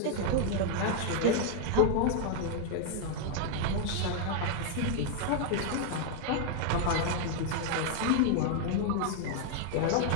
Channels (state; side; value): different; both; correlation 0.00